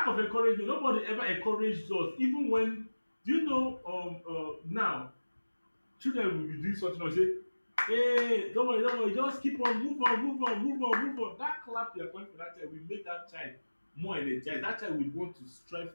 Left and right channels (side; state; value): both; inverted; correlation -1.00